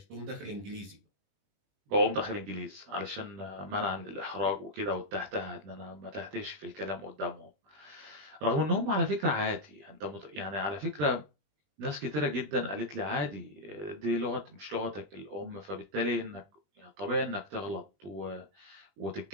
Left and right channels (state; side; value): late; left; 21 ms